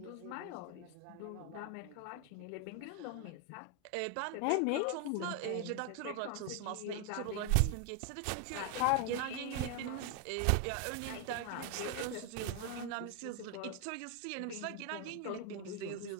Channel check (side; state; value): both; different; correlation 0.01